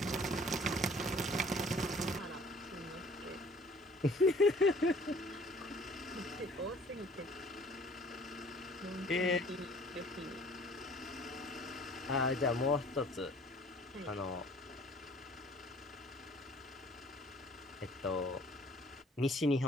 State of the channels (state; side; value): normal; both; correlation 0.53